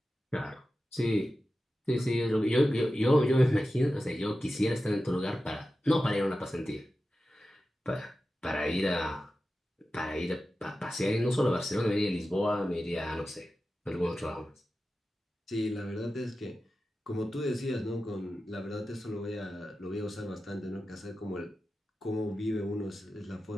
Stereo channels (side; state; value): both; normal; correlation 0.93